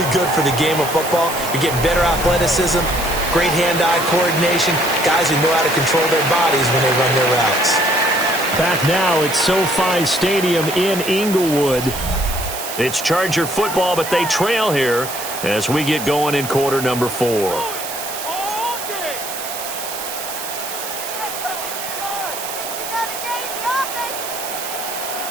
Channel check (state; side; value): noise; right; hiss, 7 dB below the sound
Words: good for the game of football. You're getting better athleticism, great hand-eye coordination, guys who know how to control their bodies when they run their routes. Back now at SoFi Stadium in Inglewood. It's Charger football, but they trail here as we get going in quarter number 4.